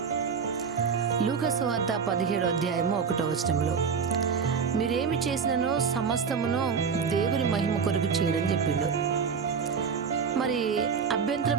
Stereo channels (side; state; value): left; quieter; 6.1 dB